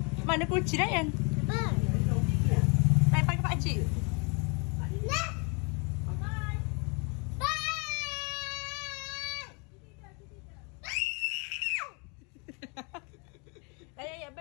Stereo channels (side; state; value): right; quieter; 33.4 dB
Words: Mana kunci Ryan? Main pakai pakcik. Ya,